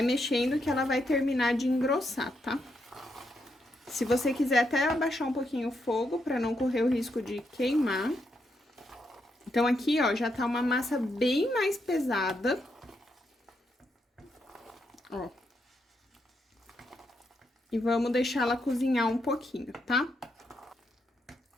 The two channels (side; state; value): both; normal; correlation 0.80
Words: mexendo que ela vai terminar de engrossar, tá? Se você quiser até abaixar um pouquinho o fogo pra não correr o risco de queimar. Então, aqui, ó, já tá uma massa bem mais pesada. Ó. E vamos deixar ela cozinhar um pouquinho, tá?